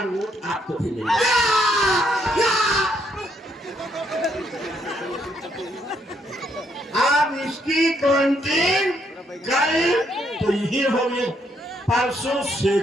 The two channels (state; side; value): normal; both; correlation 0.73